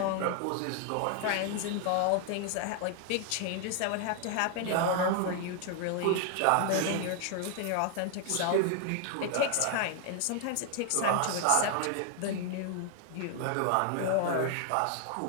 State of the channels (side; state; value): both; different; correlation 0.00